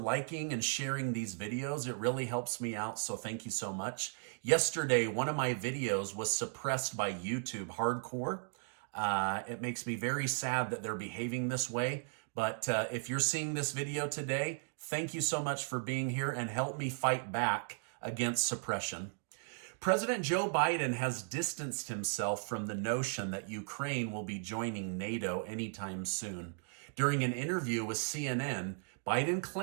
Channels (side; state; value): left; silent; 54 dB below the other